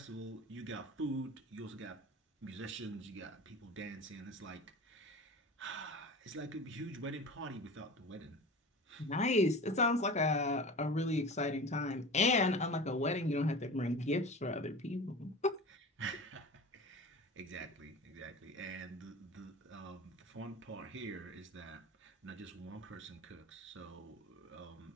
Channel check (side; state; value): both; normal; correlation 0.34